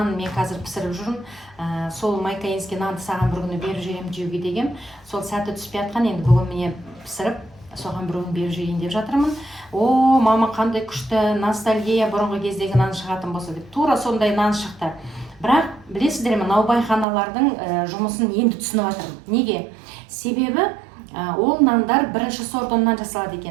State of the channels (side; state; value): left; drops out; at 17.1 s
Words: мен қазір пісіріп жүрмін. Сол майкаинский нанды саған бір күні беріп жіберемін жеуге деген. Сол сәті түспей жатқан, енді бүгін міне пісіріп, соған бір күн беріп жіберейін деп жатырмын. О, мама, қандай күшті ностальгия, бұрынғы кездегі нан шығатын болса деп. Тура сондай нан шықты. Бірақ білесіздер ме, наубайханалардың жұмысын енді түсініп жатырмын. Неге? Себебі ол нандар бірінші сорт ұннан жасалады